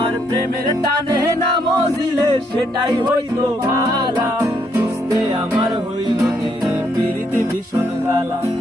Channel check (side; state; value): both; normal; correlation 0.73